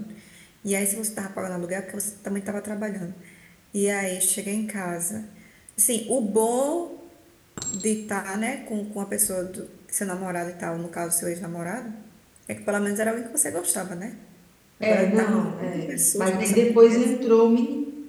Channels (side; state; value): both; identical; correlation 1.00